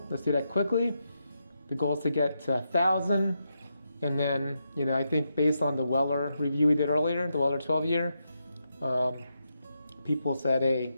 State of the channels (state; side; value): inverted; both; correlation -0.84